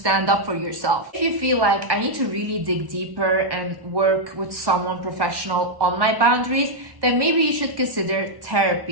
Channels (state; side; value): late; left; 1.1 ms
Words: up for yourself. If you feel like I need to really dig deeper and work with someone professional on my boundaries, then maybe you should consider